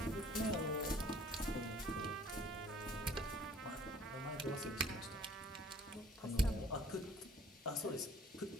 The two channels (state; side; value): normal; both; correlation 0.55